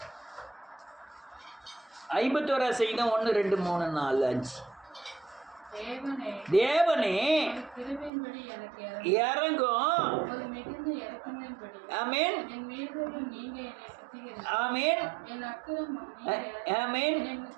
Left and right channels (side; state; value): left; drops out; at 8.1 s